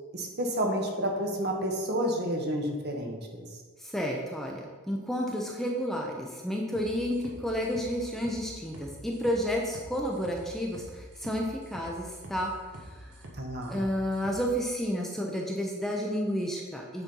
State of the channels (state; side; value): normal; both; correlation 0.51